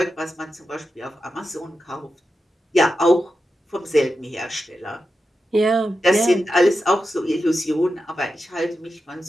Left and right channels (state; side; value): normal; both; correlation 0.90